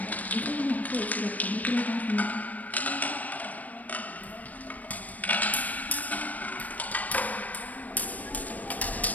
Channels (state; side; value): late; right; 0.075 ms